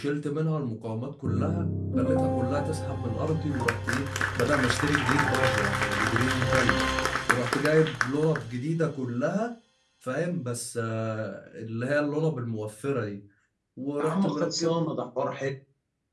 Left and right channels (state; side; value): identical; both; correlation 1.00